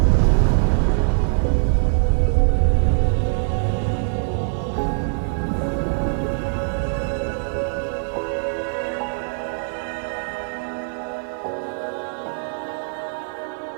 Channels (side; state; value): left; silent; 64 dB below the other